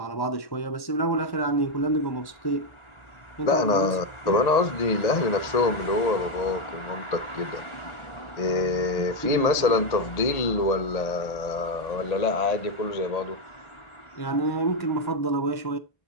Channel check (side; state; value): right; late; 1.8 ms